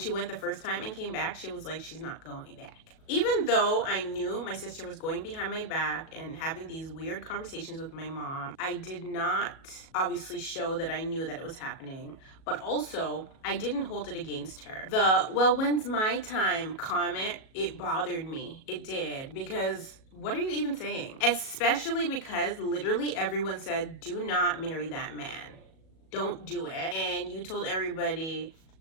went the first time and came back, she was like, she's not going back. Even though I knew my sister was going behind my back and having these weird conversations with my mom, I did not obviously show that I knew that it was happening, but also I didn't hold it against her. The, well, when's my time comment, it bothered me. It did, because what are you even saying? Especially because literally everyone said, do not marry that man. Don't do it. And you told everybody,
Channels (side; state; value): right; late; 37 ms